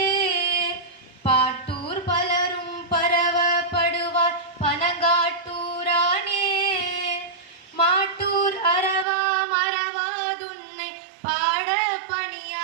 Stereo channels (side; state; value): left; drops out; at 9.1 s